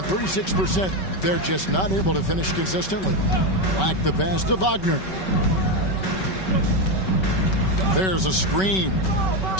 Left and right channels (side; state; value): right; late; 5.3 ms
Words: 36%. They're just not able to finish consistently. Black the pass to Wagner. There's a screen.